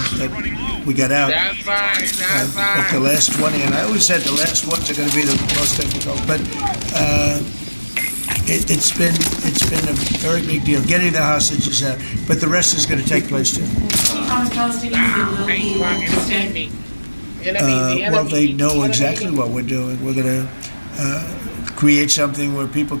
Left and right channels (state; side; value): inverted; both; correlation -1.00